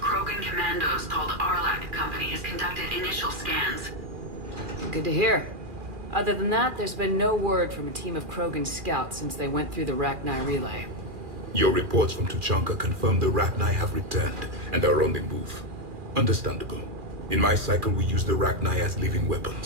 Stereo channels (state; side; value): late; left; 2.4 ms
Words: commandos called Arlac Company has conducted initial scans. Good to hear. Other than that, there's been no word from a team of Krogan scouts since they went through the Rachni relay. Your reports from Tuchanka confirm the Rachni have returned and are on the move. Understandable. In my cycle, we use the Rachni as living